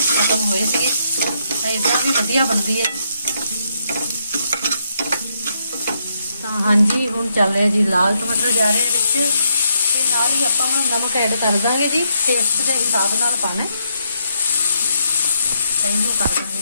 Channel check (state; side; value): inverted; both; correlation -0.77